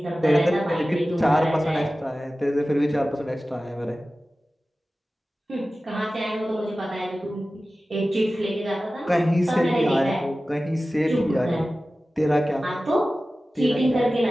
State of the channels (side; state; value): both; normal; correlation 0.96